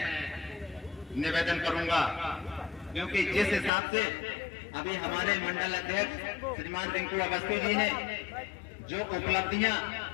निवेदन करूंगा, क्योंकि जिस हिसाब से अभी हमारे मंडल अध्यक्ष श्रीमान रिंकू अवस्थी जी ने जो उपलब्धियां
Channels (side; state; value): right; drops out; at 3.7 s